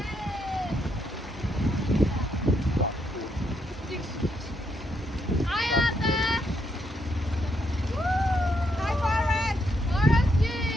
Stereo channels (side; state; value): both; normal; correlation 0.77